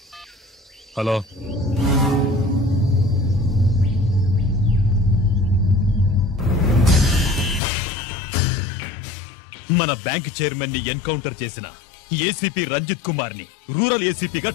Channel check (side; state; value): right; drops out; at 7.6 s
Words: హలో, మన బ్యాంక్ చైర్మన్ ని ఎన్కౌంటర్ చేసిన ఏసీపీ రంజిత్ కుమార్ ని రూరల్ ఏసీపీగా